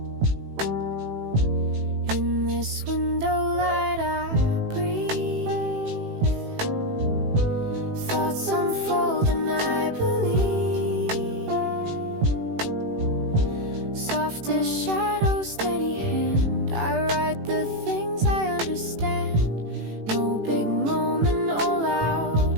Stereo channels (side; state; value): left; late; 18 ms